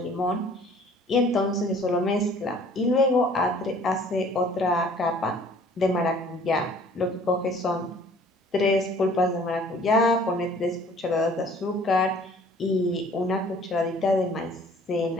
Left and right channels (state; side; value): normal; both; correlation 0.53